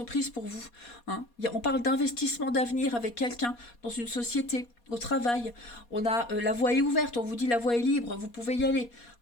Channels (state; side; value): late; right; 4.2 ms